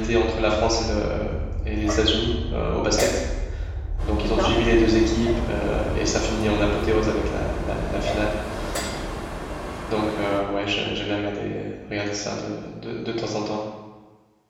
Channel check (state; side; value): identical; both; correlation 1.00